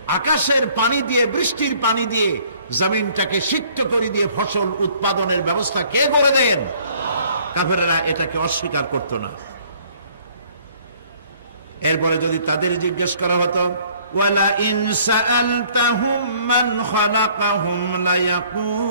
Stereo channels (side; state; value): both; inverted; correlation -0.59